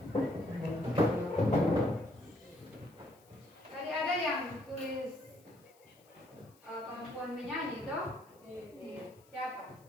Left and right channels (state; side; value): noise; left; hiss, 29 dB below the sound